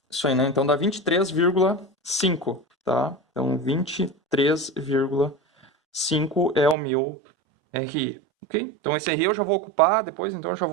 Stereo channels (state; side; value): drops out; left; at 6.8 s